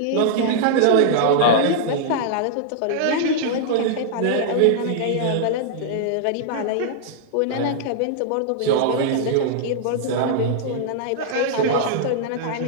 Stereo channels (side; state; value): both; different; correlation -0.01